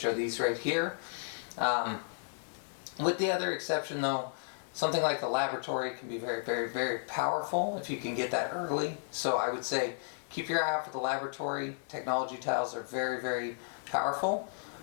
are these right here. With the other exception, though, something like the laboratory can be very, very, very powerful if you can get that early. So I would say keep your eye out for the laboratory. Technology tiles are very, very powerful.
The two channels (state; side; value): silent; right; digital silence